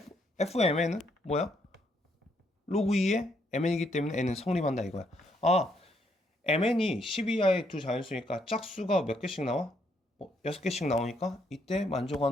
fmn은 뭐야? 로그 2의 mn이기 때문에 n은 성립한다 이거야. 아 mn이 10 이하의 두 자연수니까 짝수가 몇 개씩 나와? 6개씩 나오니까 이때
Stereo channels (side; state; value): both; normal; correlation 0.73